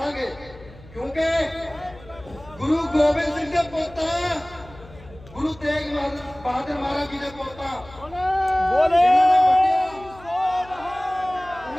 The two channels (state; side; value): noise; left; hum, 21 dB below the sound